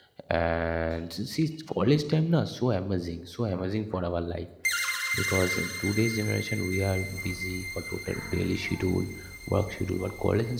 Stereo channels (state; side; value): identical; both; correlation 1.00